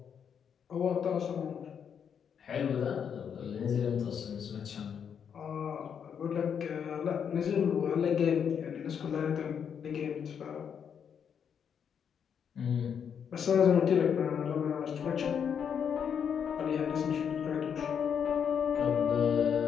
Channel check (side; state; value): right; quieter; 7.6 dB